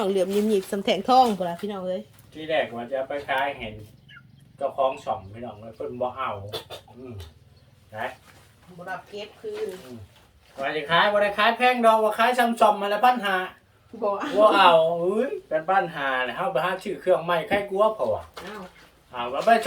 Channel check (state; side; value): identical; both; correlation 1.00